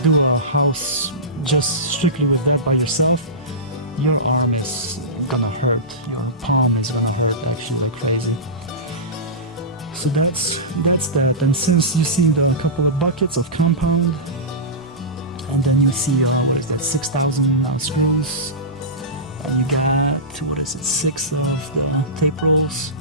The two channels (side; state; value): both; normal; correlation -0.19